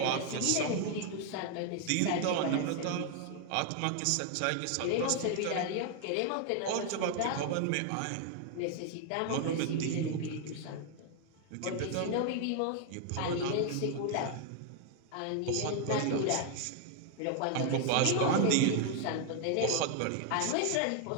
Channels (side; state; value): both; different; correlation 0.00